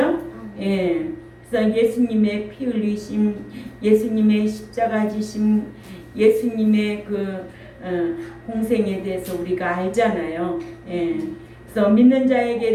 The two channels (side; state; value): both; identical; correlation 1.00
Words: 예. 그래서 예수님의 피 흘리심, 예수님의 십자가 지심, 예수님의 공생에 대해서 우리가 알잖아요. 예. 그래서 믿는 자에게